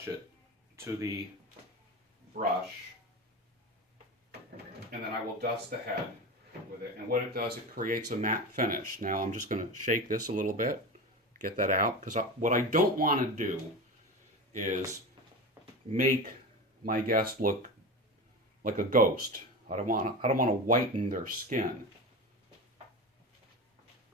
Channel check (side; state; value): both; normal; correlation 0.26